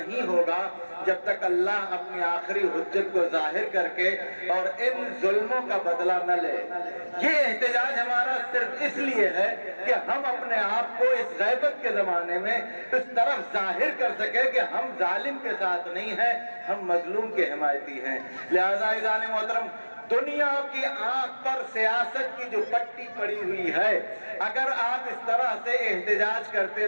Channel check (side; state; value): both; inverted; correlation -1.00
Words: ہوگا جب تک اللہ اپنی آخری حجت کو ظاہر کر کے اور ان ظلموں کا بدلہ نہ لے۔ یہ احتجاج ہمارا صرف اس لیے ہے کہ ہم اپنے آپ کو اس غیبت کے زمانے میں اس طرف ظاہر کر سکیں کہ ہم ظالم کے ساتھ نہیں ہیں، ہم مظلوم کے حمایتی ہیں۔ لہذا عزیزان محترم، دنیا کی آنکھ پر سیاست کی جو پٹی پڑی ہوئی ہے، اگر آپ اس طرح سے احتجاج کرتے